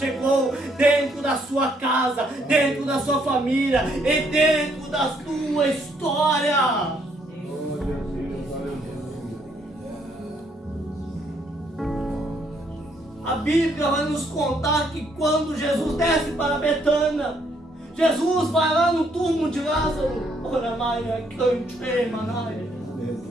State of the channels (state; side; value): normal; both; correlation 0.70